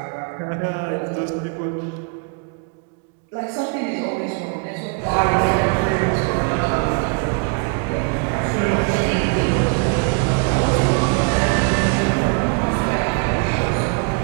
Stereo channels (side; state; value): left; quieter; 34.2 dB